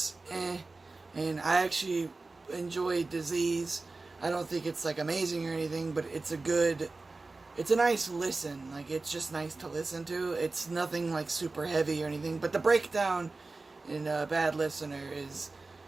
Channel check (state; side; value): quieter; left; 3.5 dB